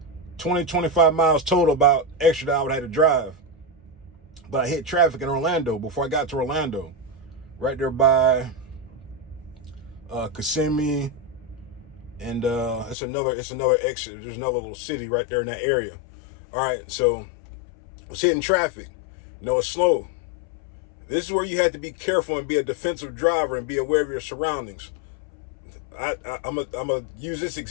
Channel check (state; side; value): drops out; right; at 13.0 s